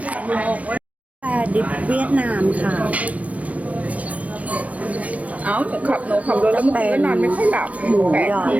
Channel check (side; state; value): left; late; 0.067 ms